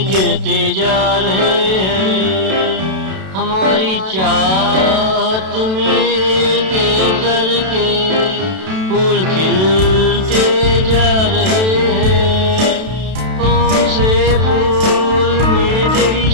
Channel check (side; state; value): left; late; 32 ms